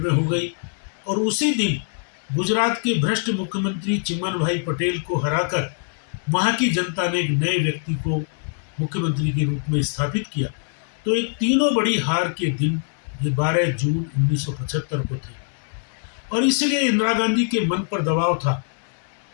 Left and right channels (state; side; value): silent; right; 63 dB below the other